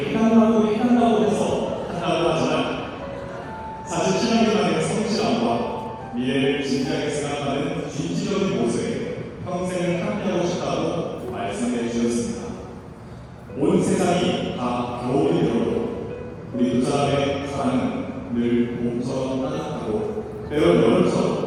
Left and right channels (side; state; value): both; identical; correlation 1.00